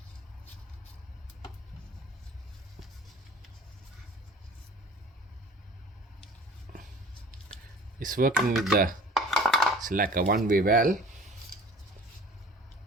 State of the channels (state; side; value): normal; both; correlation 0.47